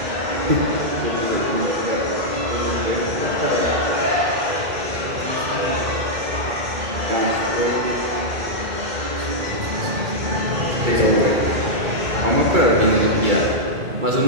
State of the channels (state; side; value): late; left; 2.3 ms